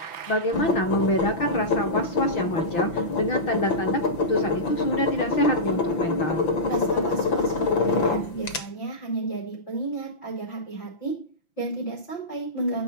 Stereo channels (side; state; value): right; late; 5.9 ms